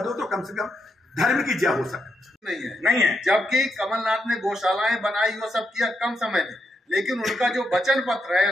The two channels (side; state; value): both; normal; correlation 0.81